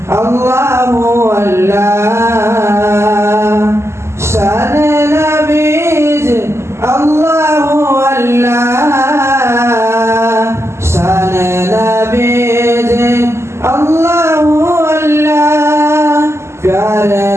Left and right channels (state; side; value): late; left; 0.13 ms